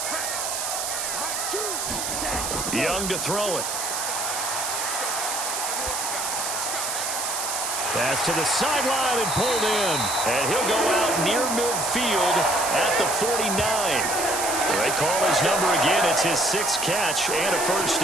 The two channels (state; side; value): noise; right; hiss, 2 dB below the sound